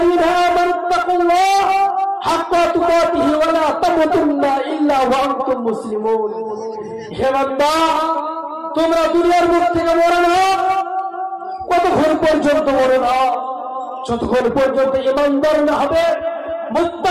আমানু তাকুল্লাহ হাক্কা তুকাতিহি ওয়া লা তামুতুন্না ইল্লা ওয়া আনতুম মুসলিমুন। হে বান্দা, তোমরা দুনিয়ার মুখ থেকে মরো না। কতক্ষণ পর্যন্ত মরো না? যতক্ষণ পর্যন্ত ঈমানদার না হবে,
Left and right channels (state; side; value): identical; both; correlation 1.00